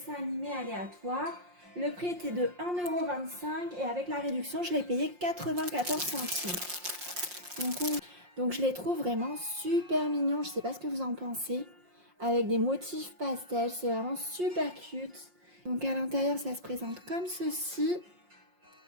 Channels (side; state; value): left; late; 5.6 ms